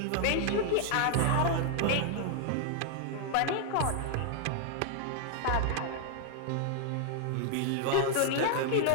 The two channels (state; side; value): different; both; correlation 0.00